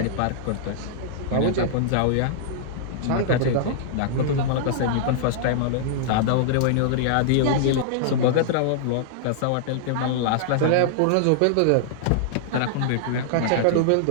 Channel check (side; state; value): both; different; correlation -0.01